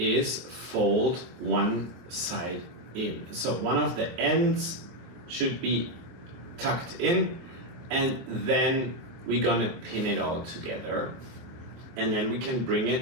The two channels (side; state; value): left; late; 23 ms